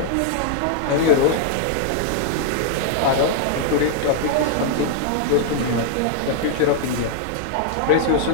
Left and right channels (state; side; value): different; both; correlation -0.01